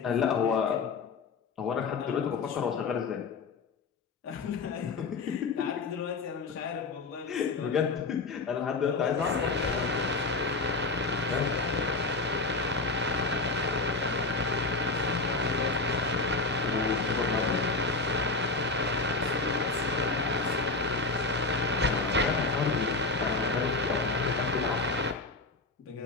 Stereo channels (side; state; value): right; quieter; 3.6 dB